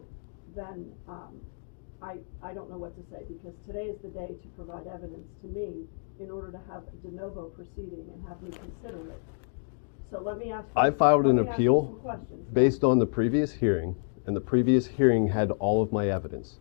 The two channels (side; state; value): right; silent; digital silence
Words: then I don't know what to say, because today is the day to provide evidence to me in order to have a de novo proceeding and have me consider it. So let me ask you, I filed an appeal some questions. based on the previous hearing, and the previous hearing had all of my evidence.